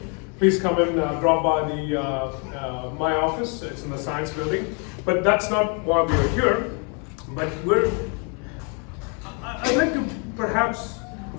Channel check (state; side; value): quieter; right; 36.5 dB